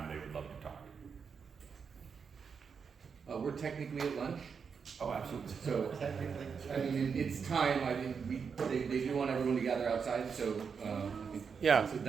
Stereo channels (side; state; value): left; quieter; 6.1 dB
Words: they would love to talk. We're technically at lunch. Oh, absolutely. So, I mean, it's time. I think they do want everyone to gather outside. So, I think Yeah.